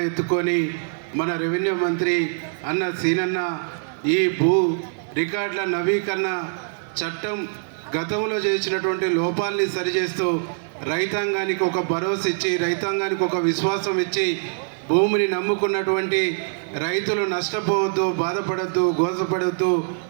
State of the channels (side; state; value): left; silent; digital silence